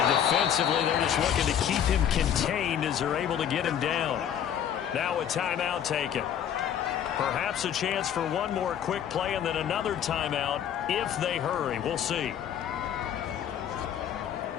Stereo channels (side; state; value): right; quieter; 9.3 dB